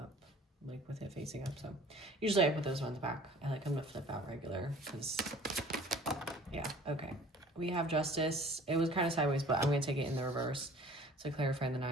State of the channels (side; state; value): both; normal; correlation 0.49